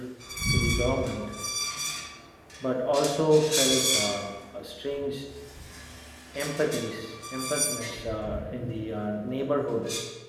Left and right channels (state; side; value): identical; both; correlation 1.00